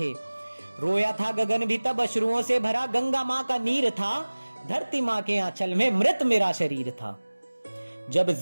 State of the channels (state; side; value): inverted; both; correlation -1.00